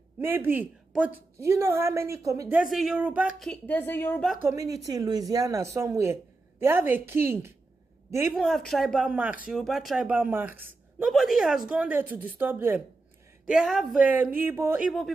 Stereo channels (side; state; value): left; quieter; 3.3 dB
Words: Maybe, but you know how many there's a Yoruba community in Louisiana somewhere. They have a king. They even have tribal marks, Yoruba tribal marks. Nobody has gone there to disturb them. They have Igbo